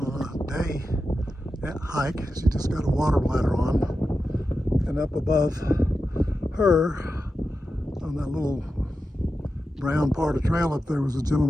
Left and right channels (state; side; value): normal; both; correlation 0.91